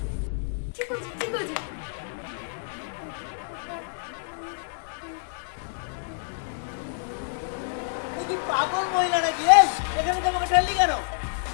ঠিক আছে ঠিক আছে। তুই কি পাগল মহিলা নাকি? এই এখানে তোমাকে ঠেললি কেন?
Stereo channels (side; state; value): right; silent; digital silence